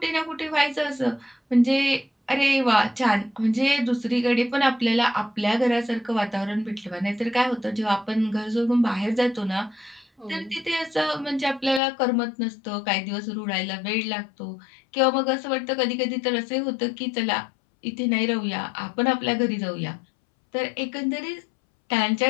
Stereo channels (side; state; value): right; drops out; at 11.8 s